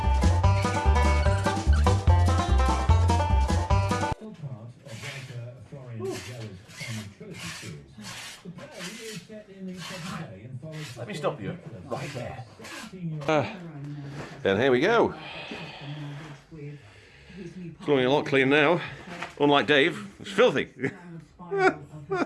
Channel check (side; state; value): both; identical; correlation 1.00